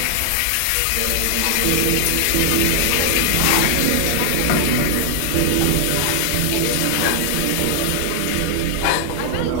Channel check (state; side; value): different; both; correlation 0.00